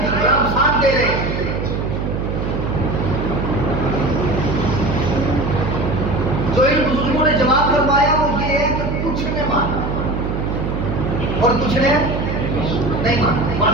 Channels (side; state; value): right; noise; hum, 2 dB below the sound